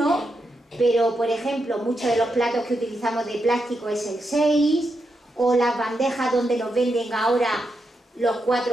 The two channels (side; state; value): both; normal; correlation 0.84